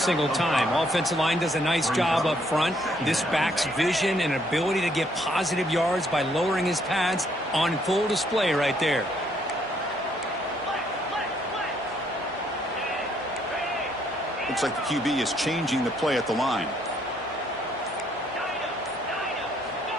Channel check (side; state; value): both; normal; correlation 0.69